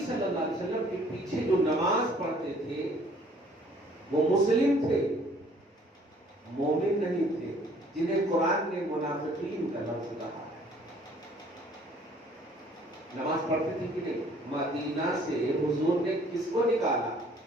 اللہ علیہ وسلم کے پیچھے جو نماز پڑھتے تھے وہ مسلم تھے، مومن نہیں تھے، جنہیں قرآن نے منافقین کا لفظ کہا ہے۔ نماز پڑھتے تھے کہ نہیں؟ مدینہ سے حضور نے کس کو نکالا؟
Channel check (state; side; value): normal; both; correlation 0.58